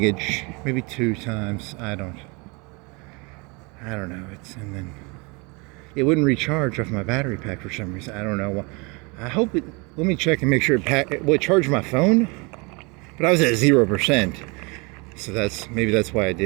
maybe 2 times. I don't know. And then it wouldn't recharge off my battery pack for some reason. I don't know. I hope it. Let me check and make sure it charged my phone. But I was at 0%, so maybe that's why I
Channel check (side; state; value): left; quieter; 28.9 dB